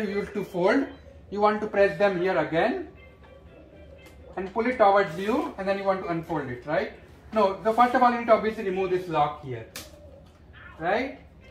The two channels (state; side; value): identical; both; correlation 1.00